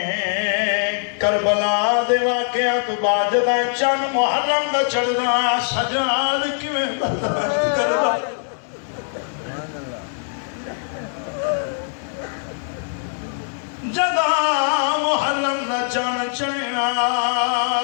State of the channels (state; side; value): silent; right; 64 dB below the other